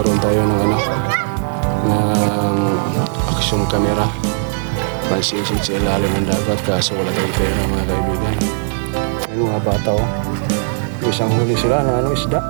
tayo ng ng action camera. Pansisid sa ilalim ng dagat kaso wala tayong pera mga kaibigan. Ayun mga bata oh. Isang huli sila na isda.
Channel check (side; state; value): left; silent; digital silence